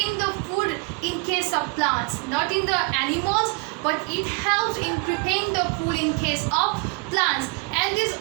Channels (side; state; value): left; quieter; 30.4 dB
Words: the food in case of plants, not in the animals, but it helps in preparing the food in case of plants. And this